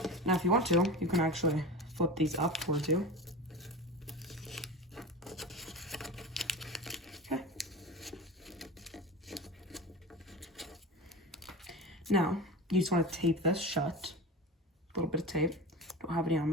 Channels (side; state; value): both; normal; correlation 0.29